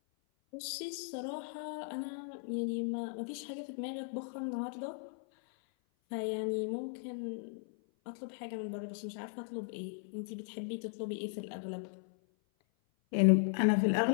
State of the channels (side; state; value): right; silent; 53 dB below the other